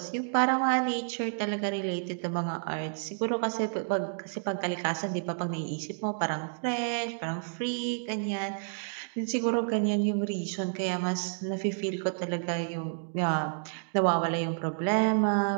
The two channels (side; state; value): left; silent; digital silence